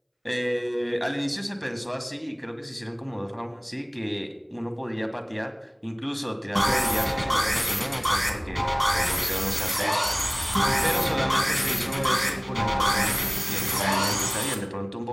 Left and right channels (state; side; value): identical; both; correlation 1.00